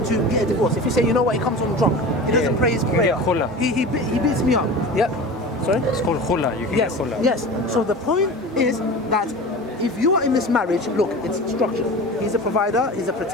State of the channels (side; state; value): both; normal; correlation 0.33